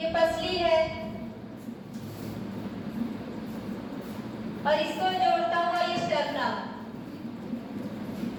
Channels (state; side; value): identical; both; correlation 1.00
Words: ये पसली है और इसको जोड़ता हुआ ये स्टर्नम